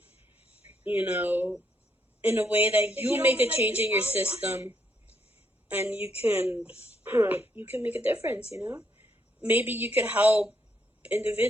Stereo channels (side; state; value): both; normal; correlation 0.74